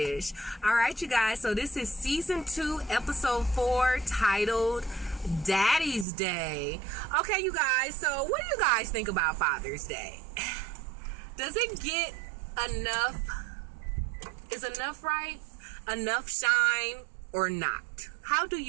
All right, you guys, so this is season 2, episode 4, titled Daddy's Day. Okay, you guys, so what do you guys think about Father's Day? Does it get enough? Is enough right? Enough shine or not? How do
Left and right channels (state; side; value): drops out; left; at 6.1 s